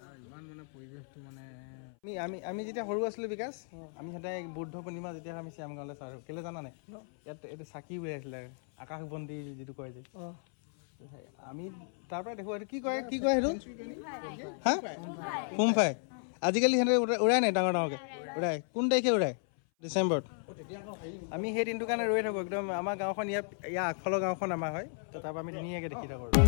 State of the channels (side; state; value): right; silent; 55 dB below the other